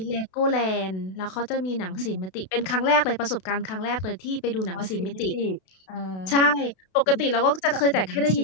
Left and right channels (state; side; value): late; right; 32 ms